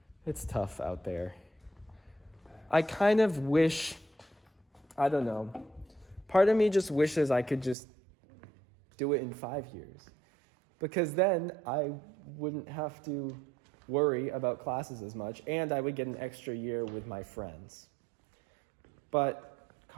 It's tough out there. I kind of wish. I don't know. Part of me just wishes I could just do it in 5 years. Because then I wouldn't have to worry about classes as much, and I would get an extra year with my friends. But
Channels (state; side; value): drops out; left; at 7.8 s